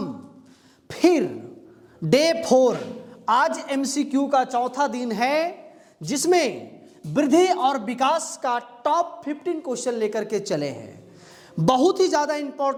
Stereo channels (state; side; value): identical; both; correlation 1.00